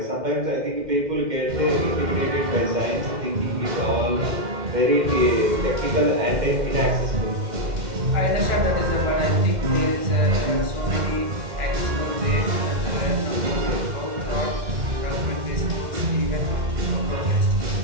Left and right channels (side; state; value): left; late; 2.1 ms